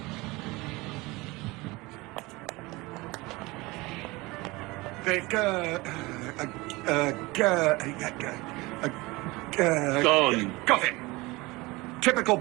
Gone. Got it. Typical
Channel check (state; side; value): quieter; left; 22.5 dB